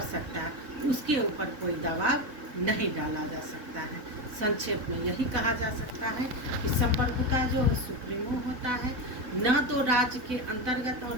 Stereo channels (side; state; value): left; late; 4.0 ms